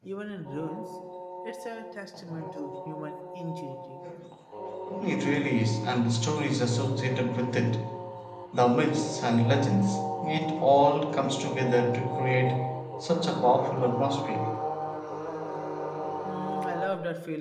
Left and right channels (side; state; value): both; identical; correlation 1.00